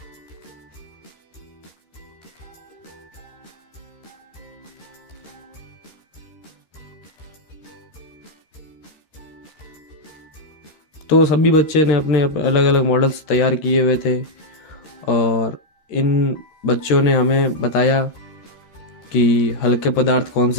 तो सभी बच्चे ने अपने अलग अलग मॉडल्स तैयार किए हुए थे। और इन बच्चों ने हमें बताया कि हल्के पदार्थ कौन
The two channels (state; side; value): late; right; 13 ms